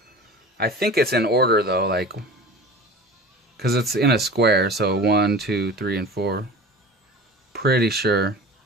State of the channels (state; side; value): normal; both; correlation 0.37